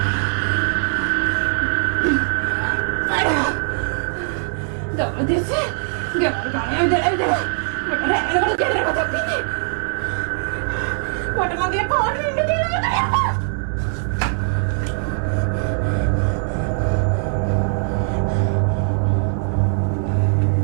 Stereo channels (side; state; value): left; silent; 57 dB below the other